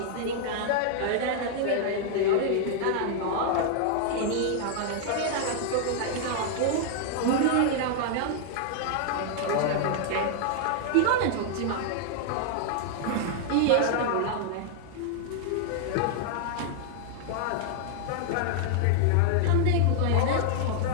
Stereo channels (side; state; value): both; different; correlation -0.01